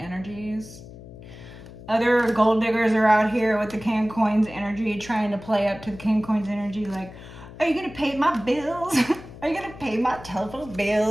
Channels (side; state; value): left; noise; hum, 16 dB below the sound